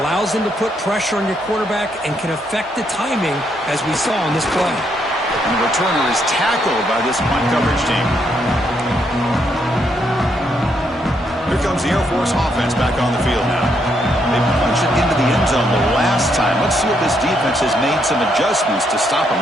them to put pressure on your quarterback and can affect the timing, as we saw on this play. And the returner is tackled by this punt coverage team. Here comes the Air Force offense back on the field now. They punch it into the end zone the last time. Let's see if this defense has made some adjustments to stop them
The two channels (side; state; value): both; normal; correlation 0.75